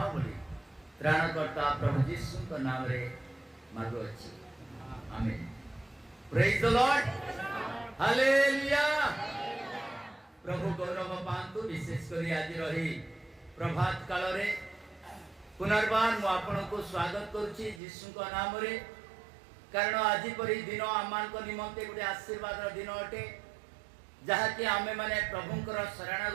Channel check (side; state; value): left; drops out; at 17.8 s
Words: बोली त्राणकर्ता प्रभु यीशु का नाम रे मांगो अछि आमीन प्रेज द लॉर्ड हालेलुया प्रभु गौरव पांतु विशेष करी आज रही प्रभात काल रे पुनर्बार मु आपन को स्वागत करूची यीशु का नाम रे कारण आज परी दिन आमान को निमंते गुटे आशीर्वाद रो दिन अटे जहाँ कि आमे माने प्रभुंकर